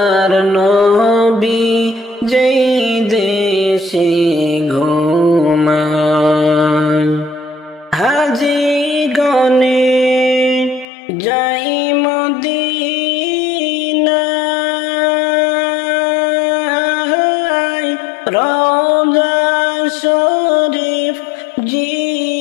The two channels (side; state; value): right; drops out; at 10.9 s